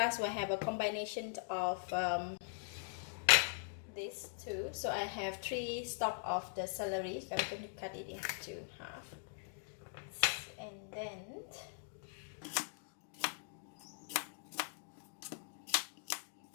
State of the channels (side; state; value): right; silent; digital silence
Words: will have a combination of these 2. So I have 3 stalks of the celery. So I'm going to cut it into half. And then